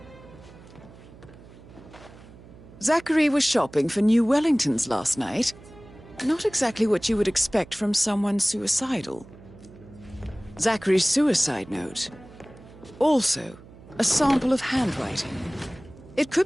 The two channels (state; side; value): noise; right; hum, 20 dB below the sound